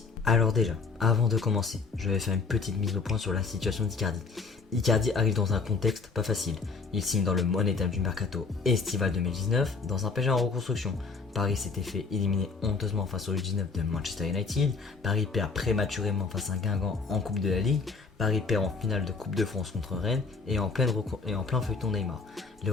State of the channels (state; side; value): quieter; right; 4.6 dB